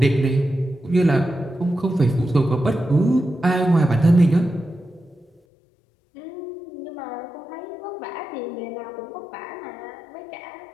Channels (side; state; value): right; drops out; at 5.4 s